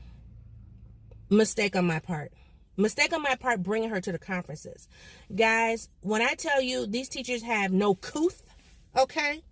Mistake on my part bringing her to the conferences. Guys, when I tell you these teachers have no couth, okay,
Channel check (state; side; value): identical; both; correlation 1.00